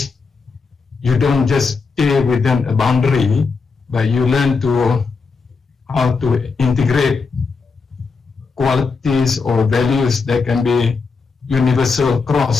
you don't just stay within a boundary, but you learn how to integrate qualities or values that can be universal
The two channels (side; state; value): right; quieter; 4.7 dB